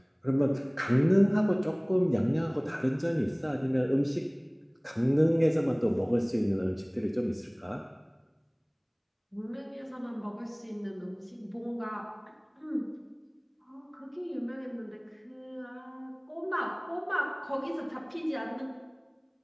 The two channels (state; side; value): identical; both; correlation 1.00